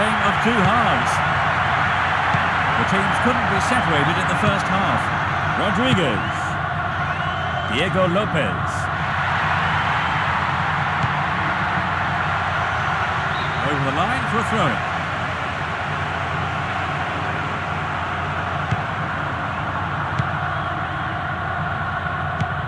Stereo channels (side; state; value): both; identical; correlation 1.00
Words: of two halves. The teams couldn't be separated in the first half. Rodriguez. Diego Lopez. Over the line for a throw-in.